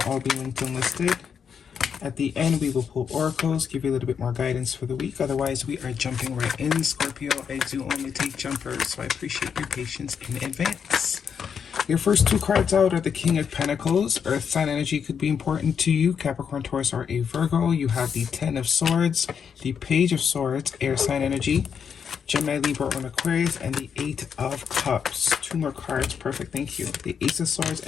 all be linked and listed. At the end, we will pull oracles, give you a little bit more guidance for the week. Otherwise, we are jumping right in, Scorpio. I do only take jumpers, so I appreciate your patience in advance. Your first two cards out are the King of Pentacles. Earth sign energy could be important to you. Capricorn, Taurus, or a Virgo. You have the Ten of Swords, the Page of Swords, air sign energy. Gemini, Libra, or Aquarius, and the Eight of Cups. Two more cards. Perfect. Thank you. The Ace of Swords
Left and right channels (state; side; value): quieter; right; 7.1 dB